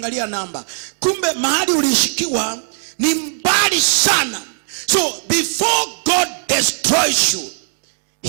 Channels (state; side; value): silent; left; digital silence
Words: namba. Kumbe mahali ulishikiwa ni mbali sana. So before God destroys you,